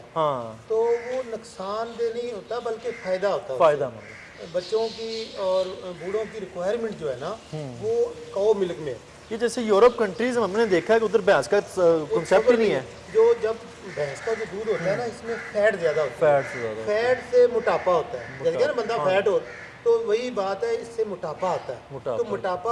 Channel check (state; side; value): identical; both; correlation 1.00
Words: हाँ, तो वो नुकसानदेह नहीं होता बल्कि फ़ायदा होता है। फ़ायदा मंद है। बच्चों की और बूढ़ों की रिक्वायरमेंट जो है ना वो काऊ मिल्क में है। ये जैसे यूरोप कंट्रीज में हमने देखा है कि उधर भैंस का कॉन्सेप्ट ही नहीं है। जो जब भैंस का जो दूध होता है ना, इसमें फैट ज़्यादा होता है। फैट से ज़्यादा फैट से मोटापा होता है। जैसे ना बंदा फैट हो तो वही बात है, इससे मोटापा आता है। तो